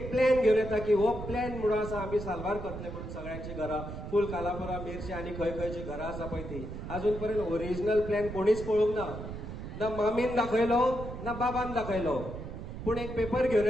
प्लॅन घेवन येता की हो प्लॅन म्हणून आसा आमी साल्वार करतले म्हणून सगळ्यांची घरां फूल कालापुरा मेर्शी आनी खंय खंयची घरां आसा पळय ती अजून पर्यंत ओरिजिनल प्लॅन कोणीच पळोवंक ना. ना मामीन दाखयलो ना बाबान दाखयलो. पूण एक पेपर घेवन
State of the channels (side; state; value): right; noise; rumble, 9 dB below the sound